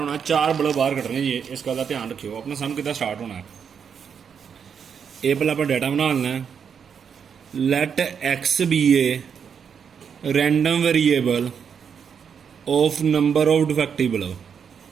4 बल्ब बाहर कटने जी, इस गल का ध्यान रखियो। अपना सम कि स्टार्ट होना, ये पहले आप डाटा बना लेना है। Let X be a random variable of number of defective bulb.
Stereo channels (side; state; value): left; quieter; 7.1 dB